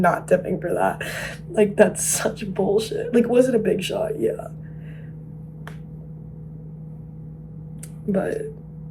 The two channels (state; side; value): identical; both; correlation 1.00